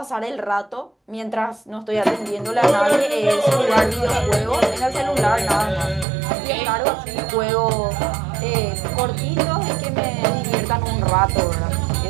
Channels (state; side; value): drops out; left; at 6.1 s